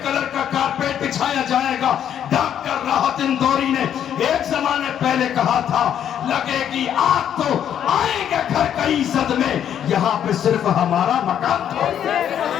کلر کا کارپیٹ بچھایا جائے گا۔ ڈاکٹر راحت اندوری نے ایک زمانے پہلے کہا تھا لگے گی آگ تو آئیں گے گھر کئی زد میں، یہاں پہ صرف ہمارا مکان تھا۔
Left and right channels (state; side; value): quieter; right; 9.6 dB